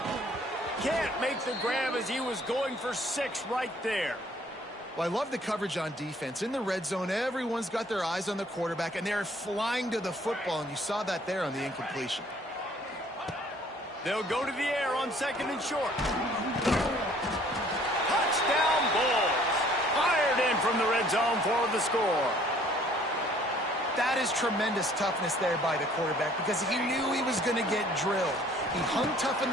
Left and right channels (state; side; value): normal; both; correlation 0.58